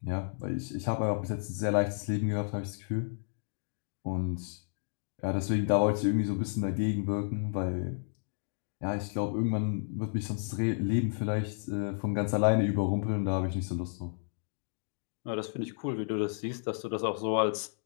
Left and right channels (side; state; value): right; silent; digital silence